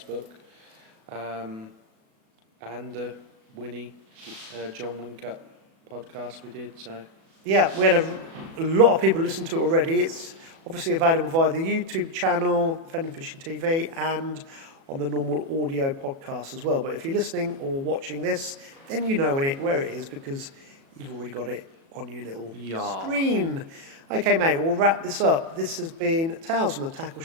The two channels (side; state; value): left; late; 37 ms